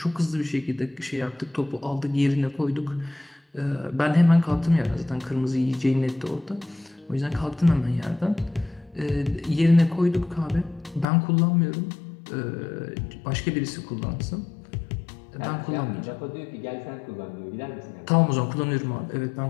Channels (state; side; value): drops out; right; at 11.1 s